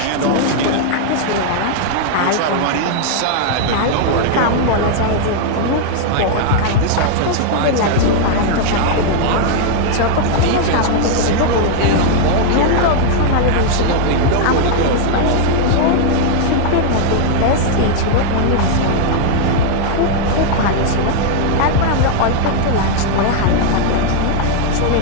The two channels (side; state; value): both; different; correlation 0.00